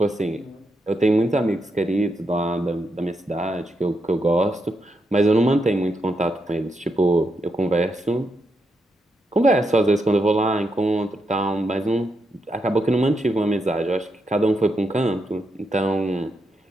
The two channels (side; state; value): both; normal; correlation 0.82